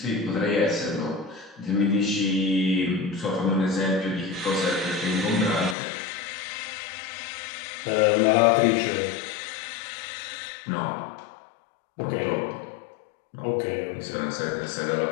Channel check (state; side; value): drops out; right; at 5.8 s